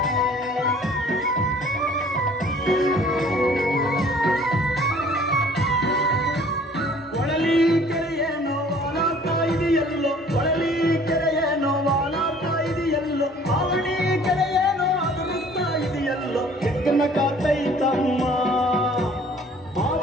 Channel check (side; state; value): both; normal; correlation 0.53